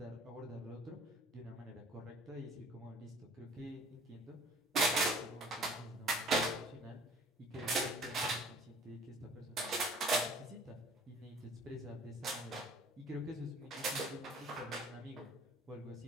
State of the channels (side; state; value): both; normal; correlation 0.52